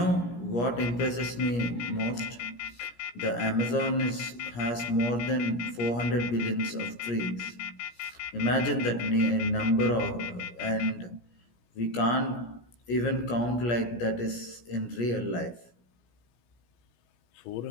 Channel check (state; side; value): late; right; 17 ms